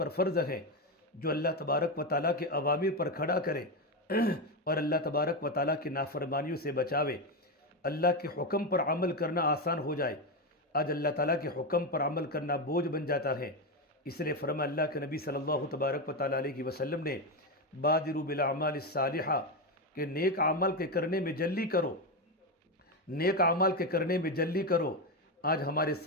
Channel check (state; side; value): normal; both; correlation 0.11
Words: فرض ہے جو اللہ تبارک و تعالیٰ کے اوامر پر کھڑا کرے اور اللہ تبارک و تعالیٰ کی نافرمانیوں سے بچاوے، اللہ کے حکم پر عمل کرنا آسان ہو جائے۔ آج اللہ تعالیٰ کے حکم پر عمل کرنا بوجھ بن جاتا ہے۔ اس لیے فرما اللہ کے نبی صلی اللہ تبارک و تعالیٰ علیہ وسلم نے بادروا بالاعمال الصالحہ کہ نیک عمل کے کرنے میں جلدی کرو، نیک عمل کے کرنے میں جلدی کرو۔ آج ہمارے